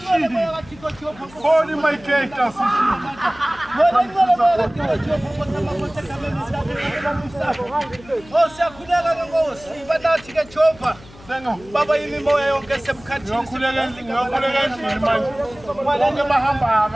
Holy my gators. Baba yimi moya yonke semkhathini ngiyokhuleka manje bonke bahamba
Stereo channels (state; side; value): noise; left; hum, 22 dB below the sound